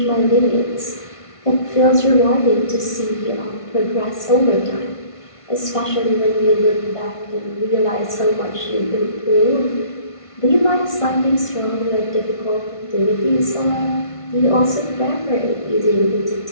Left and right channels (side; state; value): right; late; 1.5 ms